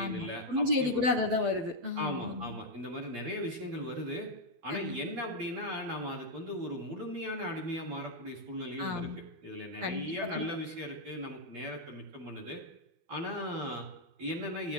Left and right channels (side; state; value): left; late; 12 ms